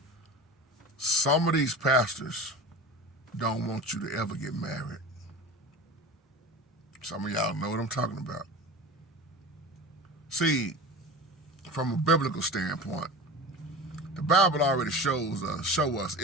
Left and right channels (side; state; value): both; normal; correlation 0.32